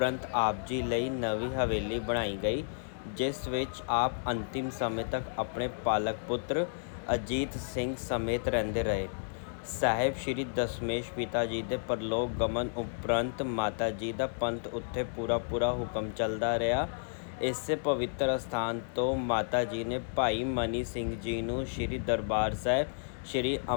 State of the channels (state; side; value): silent; right; digital silence